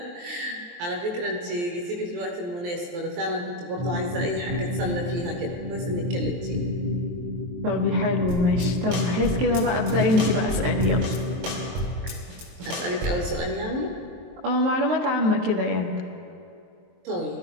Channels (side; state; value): left; late; 23 ms